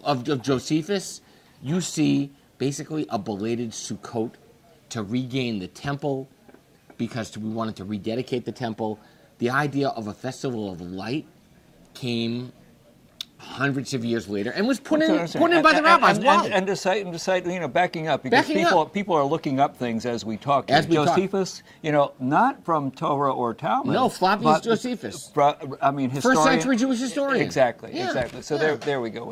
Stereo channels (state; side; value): identical; both; correlation 1.00